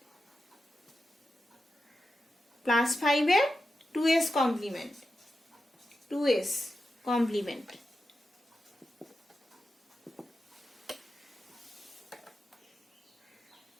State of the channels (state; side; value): normal; both; correlation 0.90